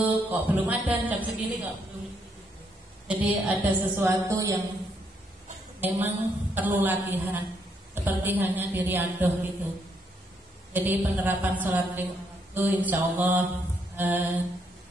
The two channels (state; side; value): normal; both; correlation 0.74